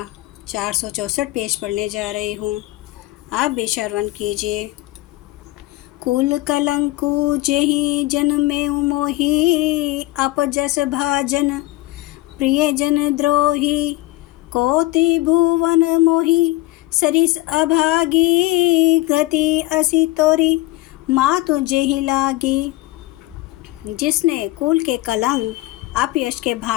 464 पेज पढ़ने जा रही हूँ। आप भी श्रवण कीजिए। कुल कलंकु जेहि जन में मोहि, अपजस भाजन प्रिय जन द्रोही। कोटि भुवन मोहि सरिस अभागी, गति असी तोरी मातु जेहि लागी। जिसने कुल के कलंक, अपयश के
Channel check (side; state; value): right; quieter; 18.5 dB